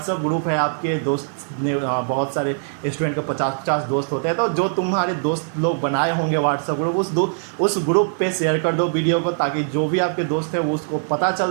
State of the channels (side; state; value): left; silent; digital silence